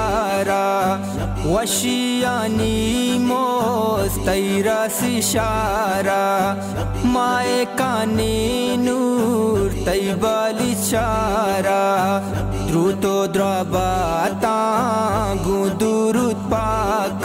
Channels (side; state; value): both; identical; correlation 1.00